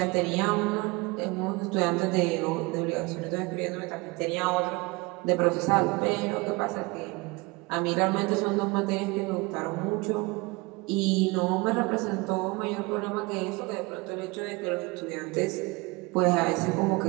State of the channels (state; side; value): quieter; left; 25.1 dB